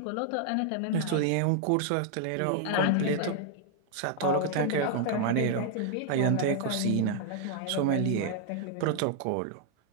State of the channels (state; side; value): different; both; correlation 0.00